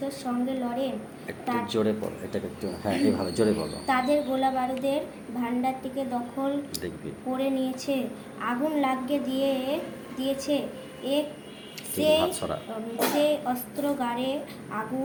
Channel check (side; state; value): both; identical; correlation 1.00